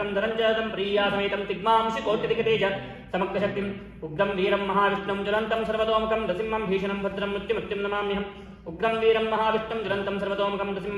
धरञ्जदं प्रियासमेतं तिग्मांशि कोटिदिगतेज समग्रशक्तिम् उग्रं वीरं महाविष्णुं ज्वलन्तं सर्वतोमुखं नृसिंहं भीषणं भद्रं मृत्युमृत्युं नमाम्यहम् उग्रं वीरं महाविष्णुं ज्वलन्तं सर्वतोमुखं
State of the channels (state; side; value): identical; both; correlation 1.00